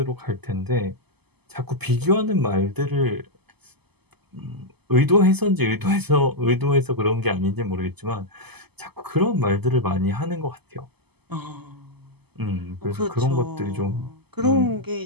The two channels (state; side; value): late; left; 0.97 ms